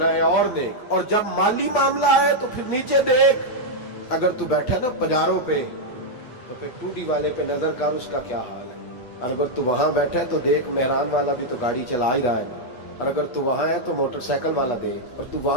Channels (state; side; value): late; right; 8.2 ms